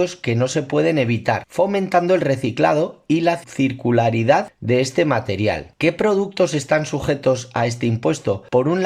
que no se pueden evitar, fomentando el reciclado y la circularidad de este material. ¿Qué productos están sujetos a este impuesto? Por un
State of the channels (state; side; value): identical; both; correlation 1.00